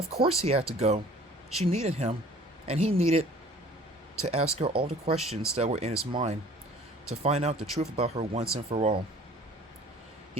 course he had to go. She needed him, and he needed to ask her all the questions that were in his mind, to find out the truth about her once and for all.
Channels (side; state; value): both; normal; correlation 0.50